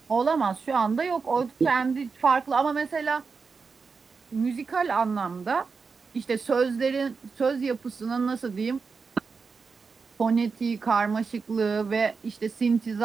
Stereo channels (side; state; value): left; quieter; 4.9 dB